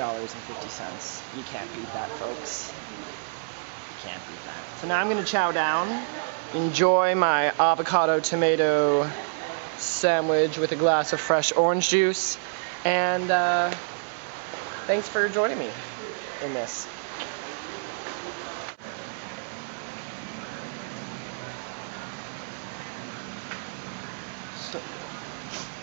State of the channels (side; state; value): left; silent; 60 dB below the other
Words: You can't beat that, folks. You can't beat that. So now I'm going to chow down, enjoy my avocado tomato sandwich with a glass of fresh orange juice, and thanks for joining me in this.